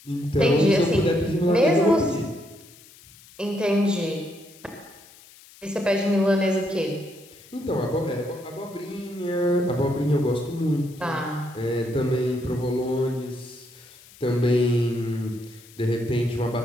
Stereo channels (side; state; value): left; noise; hiss, 23 dB below the sound